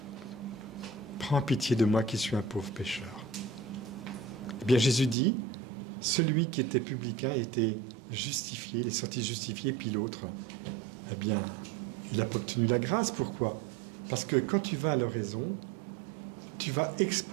prends pitié de moi qui suis un pauvre pécheur. Eh bien, Jésus dit, celui qui était publicain était justifié, il est sorti justifié, puis l'autre, eh bien, il n'a pas obtenu la grâce. Pourquoi? Parce que quand tu vas à l'oraison, tu vas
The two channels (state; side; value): drops out; left; at 5.2 s